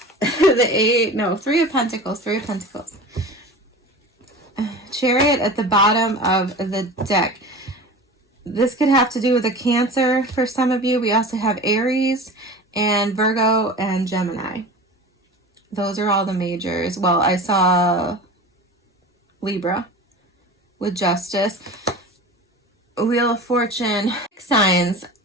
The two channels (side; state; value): both; normal; correlation 0.34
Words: Three of Pentacles, Three of Pentacles. Chariot at the bottom of the deck. This could have to do with a Cancer for some of you. We also have Aries and Virgo and Gemini. Those are all the majors. Well, I saw Libra with Justice. Wheel of Fortune. Signs.